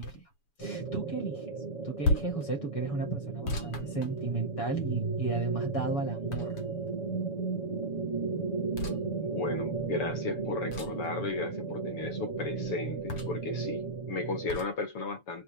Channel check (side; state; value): right; late; 7.1 ms